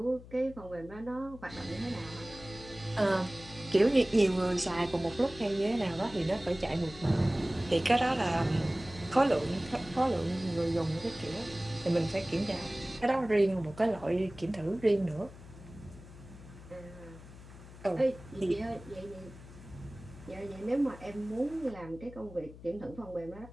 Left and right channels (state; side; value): noise; left; hum, 17 dB below the sound